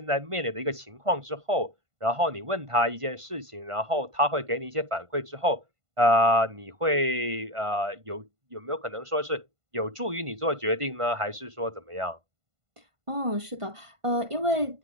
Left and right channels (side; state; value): left; late; 1.5 ms